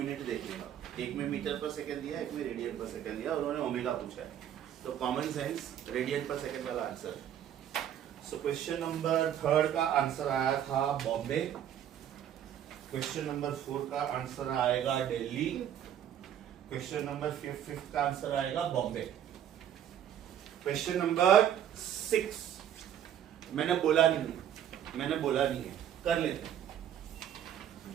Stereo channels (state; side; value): quieter; left; 10.2 dB